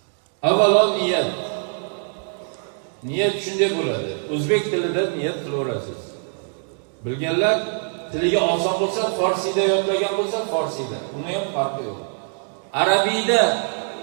Avvalo niyat. Niyat shunday bo'ladi. O'zbek tilida niyat qilaverasiz. Bilganlar tiliga oson bo'lsa, forsida yodlagan bo'lsa, forsida. Uni ham farqi yo'q. Arabiyda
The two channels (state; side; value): silent; left; 57 dB below the other